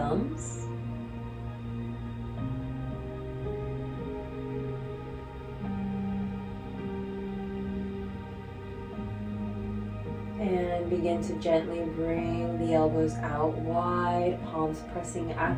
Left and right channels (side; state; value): both; identical; correlation 1.00